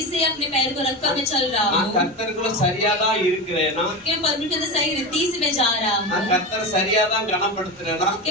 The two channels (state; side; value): normal; both; correlation 0.21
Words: से अपने पैर को रखकर मैं चल रहा நான் हूँ? கர்த்தருக்குள்ள சரியாதான் இருக்கிறேனா? क्या मैं परमेश्वर के अंदर सही रीति से मैं जा रहा நான் हूँ? கர்த்தர் சரியாதான் கனப்படுத்துறேனா?